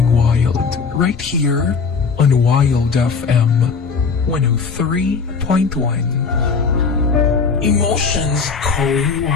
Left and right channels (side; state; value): right; quieter; 5.2 dB